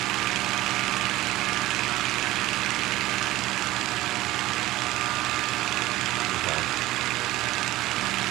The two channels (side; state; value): left; quieter; 16.9 dB